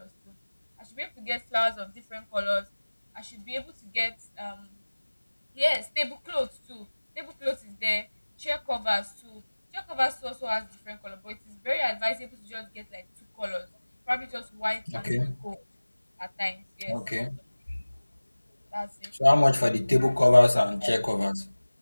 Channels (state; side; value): inverted; both; correlation -1.00